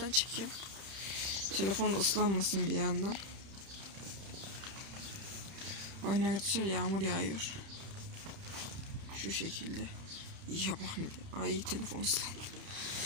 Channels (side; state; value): left; late; 30 ms